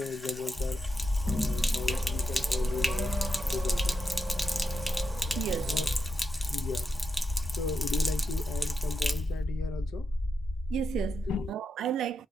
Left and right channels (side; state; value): both; normal; correlation 0.86